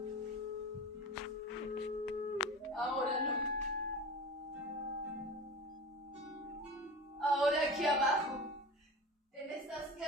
Ahora no. Ahora aquí abajo, en estas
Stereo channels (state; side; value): normal; both; correlation 0.33